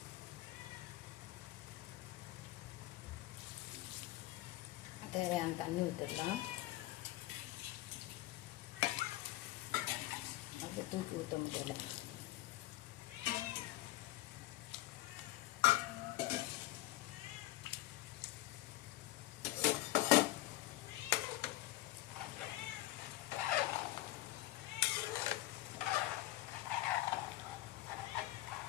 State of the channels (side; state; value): right; quieter; 16.8 dB